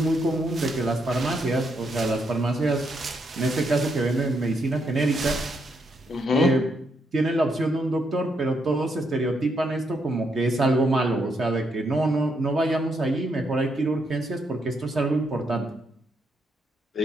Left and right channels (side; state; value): both; normal; correlation 0.77